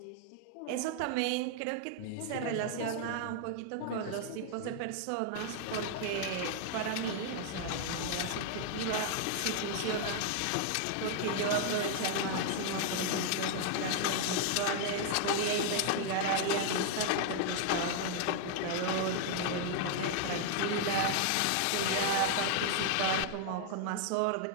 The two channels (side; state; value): both; different; correlation 0.00